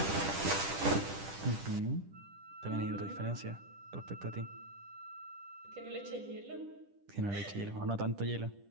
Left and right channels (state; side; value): late; left; 10 ms